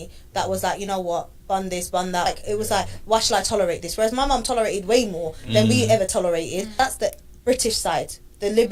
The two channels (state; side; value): identical; both; correlation 1.00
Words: that was like, you know what, bun this, bun that. Like, it was like, why should I tolerate this? Whereas my mum tolerated way more than we ever tolerated. That's the British side, the